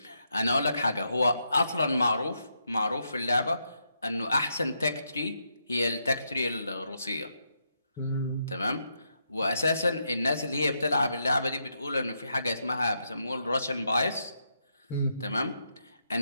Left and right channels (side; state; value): both; inverted; correlation -0.81